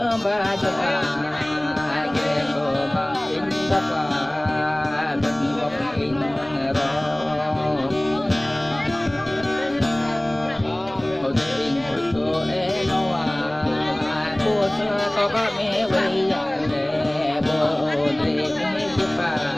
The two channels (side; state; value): left; noise; rumble, 30 dB below the sound